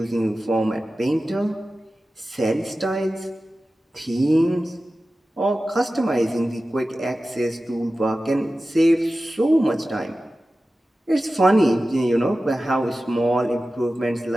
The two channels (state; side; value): normal; both; correlation 0.95